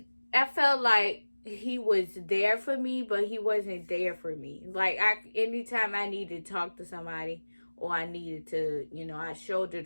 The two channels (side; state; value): both; inverted; correlation -1.00